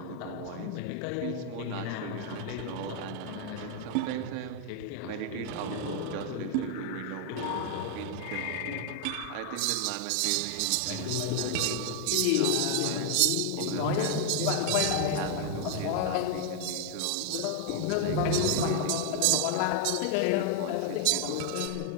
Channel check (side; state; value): both; different; correlation 0.00